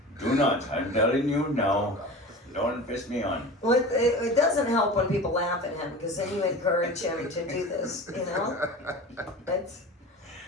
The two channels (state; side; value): normal; both; correlation 0.34